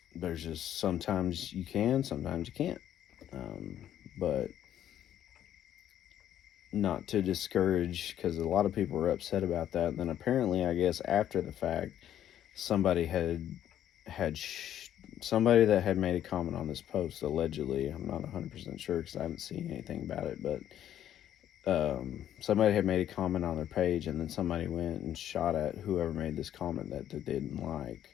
there's just sometimes you can, sometimes you can't. But not to discourage, because a lot of people were upset about that. And then apparently, I guess after the fact, somebody somebody that had made a comment on this post, allegedly. I'm not 100% sure because I haven't seen anything about it, but somebody had made a comment on their page, and then somebody went and shot at whoever made this comment that they didn't like.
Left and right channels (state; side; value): quieter; right; 10.9 dB